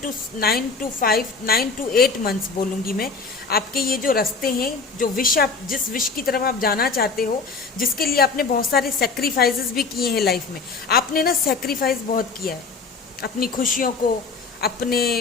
to 8 मंथ्स बोलूँगी मैं, आपके ये जो रास्ते हैं, जो विश आप, जिस विश की तरफ आप जाना चाहते हो, जिसके लिए आपने बहुत सारे सेक्रीफाइसेस भी किए हैं लाइफ में। आपने ना सेक्रीफाइस बहुत किया है, अपनी खुशियों को,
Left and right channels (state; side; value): quieter; right; 4.5 dB